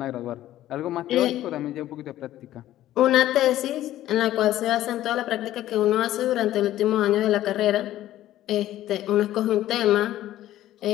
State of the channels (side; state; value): right; quieter; 13.7 dB